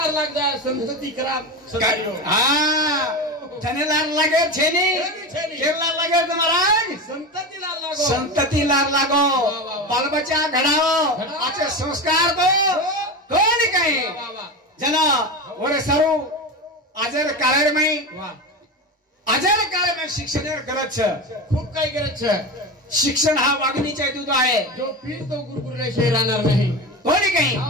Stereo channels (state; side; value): normal; both; correlation 0.23